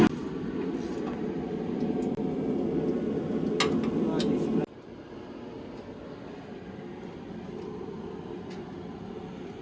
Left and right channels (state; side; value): identical; both; correlation 1.00